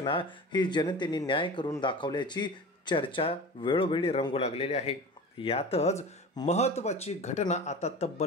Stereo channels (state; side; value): normal; both; correlation 0.34